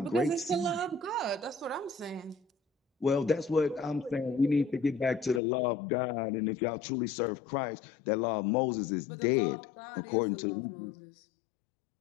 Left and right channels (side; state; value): right; drops out; at 5.4 s